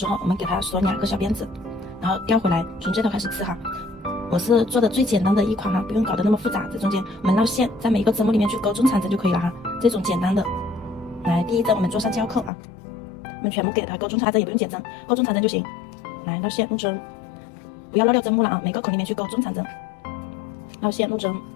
候，我们给它锁2个小辫子，然后调回来，从这头开始刺哈。我是做的最简单的一款哈，不用搞得那么复杂。这中间我们绕线，在每一个针目里面去勾中长针就可以了哈。这种简单的，来第一针我们做上胶扣啊，我们全部给它勾中长针，也不用减针，勾中长针就行。来绕线入针，不要绕掉针目了啊，每个口里面去勾中长针，绕线入针，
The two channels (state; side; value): drops out; right; at 12.5 s